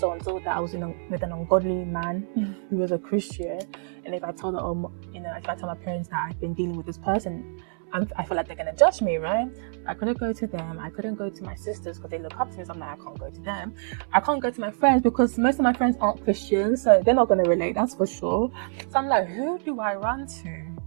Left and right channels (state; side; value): silent; left; 61 dB below the other